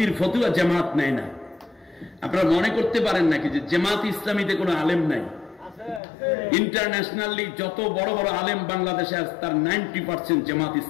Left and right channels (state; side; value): drops out; right; at 6.0 s